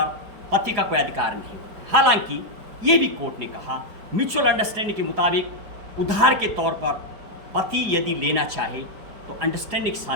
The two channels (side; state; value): left; late; 4.8 ms